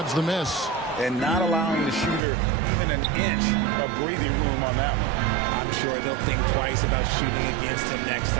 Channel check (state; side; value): drops out; left; at 2.2 s